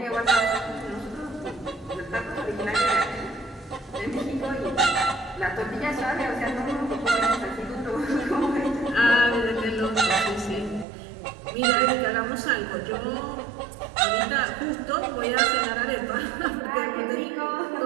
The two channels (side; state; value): left; drops out; at 10.9 s